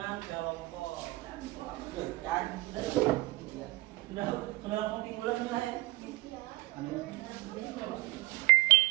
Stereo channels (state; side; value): quieter; left; 21.6 dB